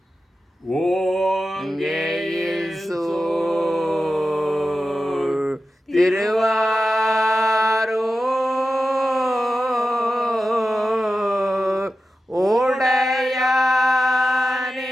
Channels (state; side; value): normal; both; correlation 0.92